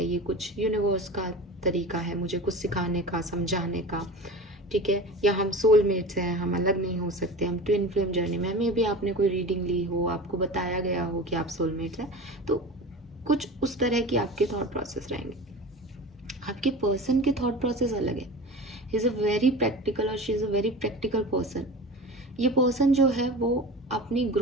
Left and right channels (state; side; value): normal; both; correlation 0.33